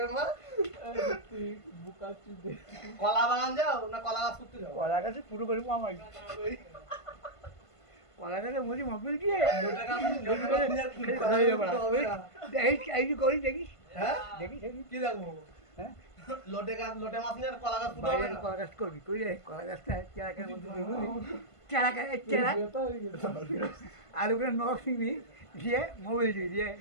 মা বোকা তুই কলা বাগান যাও না কলা গাছ করতে যাও কলা গাছে পুরো করে আমার কলা গাছে মরি মোবাইল দিয়ে দেখিস করি দেখিস হ্যাঁ দেখিস কি দেখবো হ্যাঁ লোটে মাছ নিয়ে আর কলা গাছ পুরো বাইরে কলা গাছ করবি কই রে কলা গাছটা চেরাকের মধ্যে চেরা আর ওখানে নখ শিখবি দিয়ে মোবাইল দিয়ে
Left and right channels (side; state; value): right; late; 1.5 ms